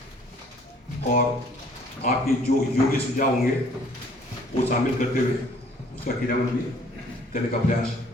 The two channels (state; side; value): normal; both; correlation 0.57